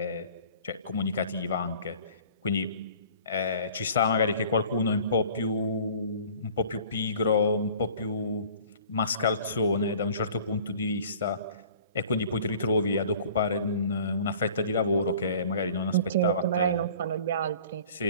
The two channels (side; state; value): both; inverted; correlation -0.48